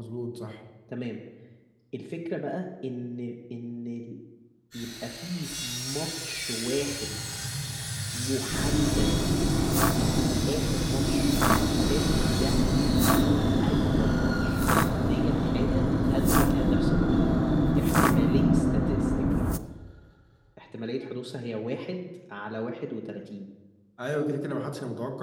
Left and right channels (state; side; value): identical; both; correlation 1.00